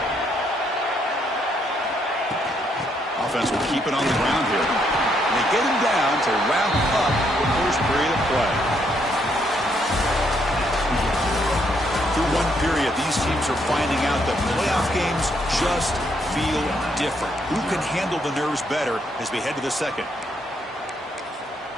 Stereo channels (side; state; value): both; normal; correlation 0.73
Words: Offense will keep it on the ground here. And they get him down to wrap up the first period of play. Through one period, these teams are finding out that playoff games just feel different. Who can handle the nerves better as we head to the second?